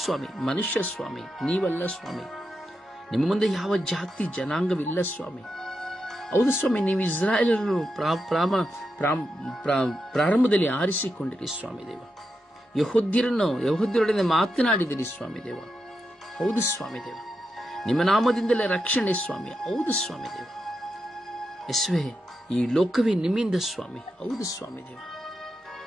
ಸ್ವಾಮಿ? ಮನುಷ್ಯ ಸ್ವಾಮಿ, ನೀವಲ್ಲ ಸ್ವಾಮಿ. ನಿಮ್ಮ ಮುಂದೆ ಯಾವ ಜಾತಿ ಜನಾಂಗವಿಲ್ಲ ಸ್ವಾಮಿ. ಹೌದು ಸ್ವಾಮಿ, ನೀವು ಇಸ್ರಾಯೇಲರನ್ನು ಪ್ರಾರಂಭದಲ್ಲಿ ಆರಿಸಿಕೊಂಡಿರಿ ಸ್ವಾಮಿ ದೇವ. ಯಹೂದ್ಯರೊಡನೆ ಮಾತನಾಡಿದಿರಿ ಸ್ವಾಮಿ ದೇವ. ಹೌದು ಸ್ವಾಮಿ ದೇವ, ನಿಮ್ಮ ನಾಮದಿಂದಲೇ ರಕ್ಷಣೆ ಸ್ವಾಮಿ. ಹೌದು ಸ್ವಾಮಿ ದೇವ. ಯೇಸುವೆ, ಈ ಲೋಕವೇ ನಿಮ್ಮಿಂದ ಸ್ವಾಮಿ. ಹೌದು ಸ್ವಾಮಿ ದೇವ.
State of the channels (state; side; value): normal; both; correlation 0.86